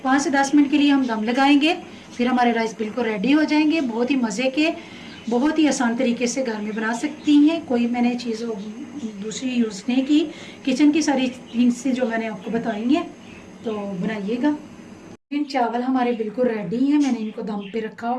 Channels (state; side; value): identical; both; correlation 1.00